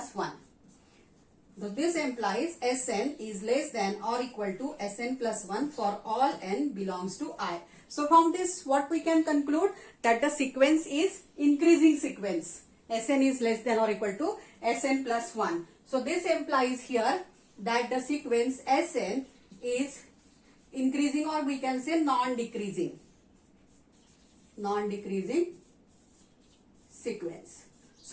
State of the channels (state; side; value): identical; both; correlation 1.00